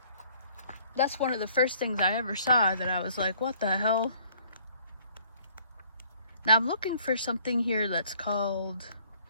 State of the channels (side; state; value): both; inverted; correlation -0.59